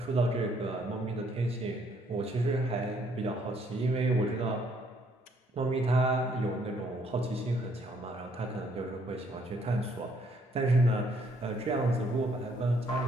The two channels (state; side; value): normal; both; correlation 0.67